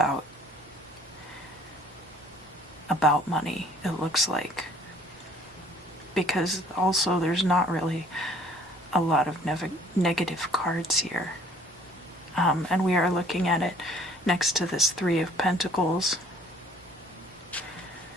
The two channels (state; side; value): normal; both; correlation 0.56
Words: money, it looks like. Because also there's not really a lot of negative cards here. And we are looking at it next to this Three of Pentacles,